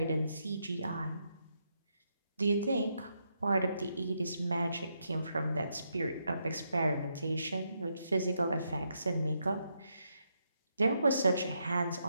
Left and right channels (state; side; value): inverted; both; correlation -0.80